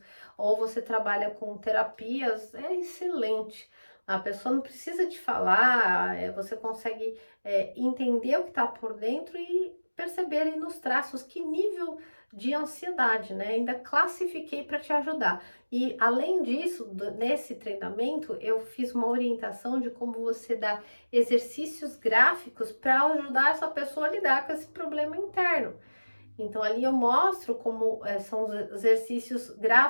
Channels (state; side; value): inverted; both; correlation -1.00